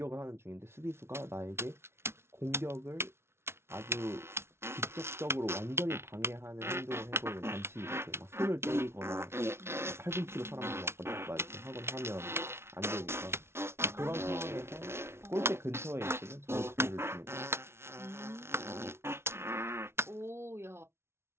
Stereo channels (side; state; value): left; late; 0.12 ms